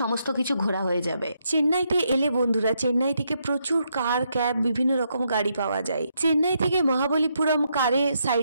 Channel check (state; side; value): inverted; both; correlation -0.78